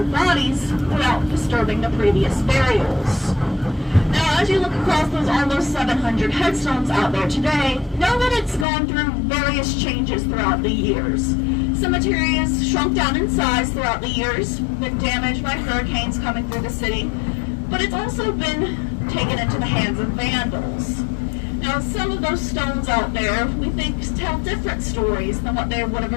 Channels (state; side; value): drops out; right; at 8.7 s